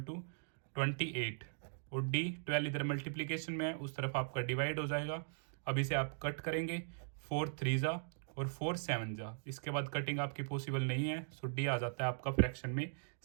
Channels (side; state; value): left; silent; digital silence